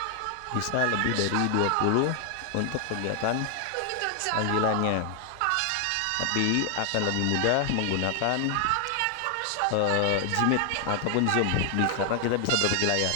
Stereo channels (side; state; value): both; different; correlation 0.00